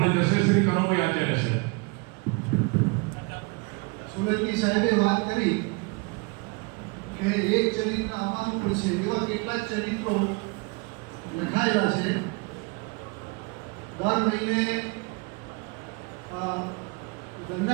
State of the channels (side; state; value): left; quieter; 29.5 dB